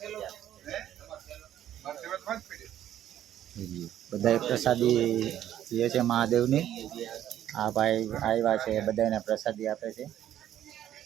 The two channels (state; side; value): quieter; left; 11.5 dB